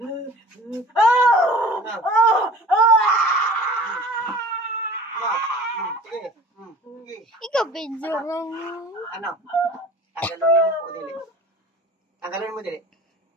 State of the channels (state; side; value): normal; both; correlation 0.44